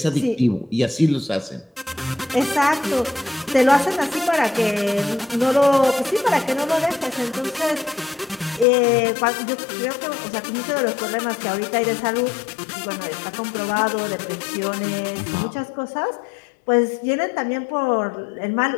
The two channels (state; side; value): drops out; right; at 8.7 s